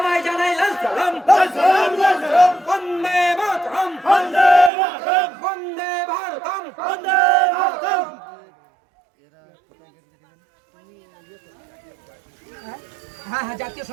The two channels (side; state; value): left; drops out; at 4.7 s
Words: জানাই লাল সালাম। বন্দে মাতরম, বন্দে মাতরম, বন্দে ভারতম, বন্দে ভারতম। হ্যাঁ, জাতীয়